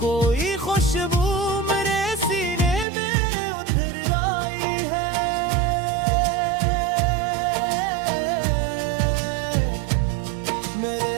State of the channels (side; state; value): left; drops out; at 2.9 s